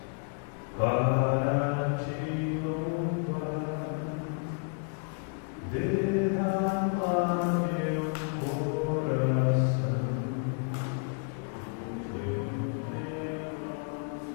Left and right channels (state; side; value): quieter; right; 38.7 dB